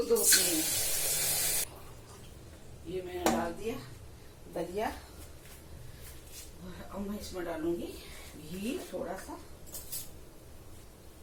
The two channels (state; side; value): identical; both; correlation 1.00